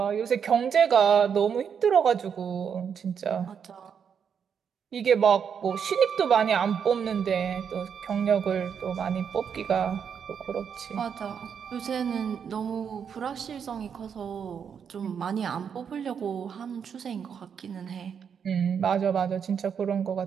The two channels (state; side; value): quieter; left; 7.3 dB